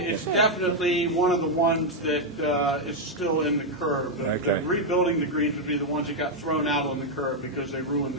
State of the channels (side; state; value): both; normal; correlation 0.00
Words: definitely one of the ones that is still in the curve. Okay. Rebuilding the greens would be the ones that got thrown out on the curve because they ruined